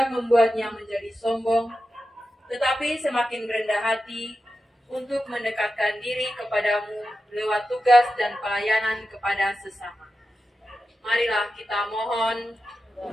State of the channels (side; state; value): both; normal; correlation 0.91